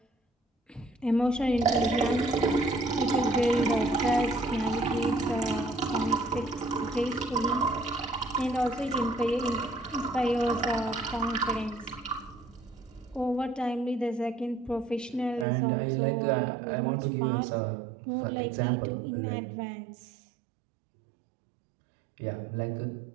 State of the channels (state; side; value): drops out; left; at 15.5 s